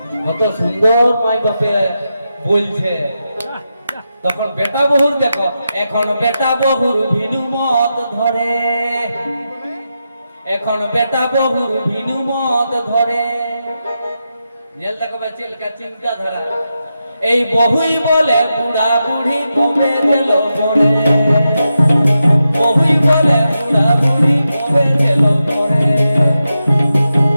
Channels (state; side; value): inverted; both; correlation -0.88